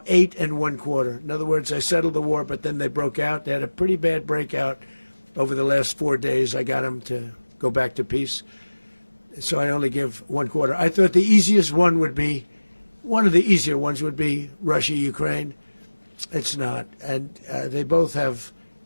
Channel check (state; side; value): inverted; both; correlation -1.00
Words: 8 1/4. In other words, I settled the war, but then they broke out. They had a pretty bad breakout over the last 4 days. I got them to go back to peace. So I only give 1/4. I thought the easiest one would be, one of the easier ones would be Russia, Ukraine. It's not. And they both have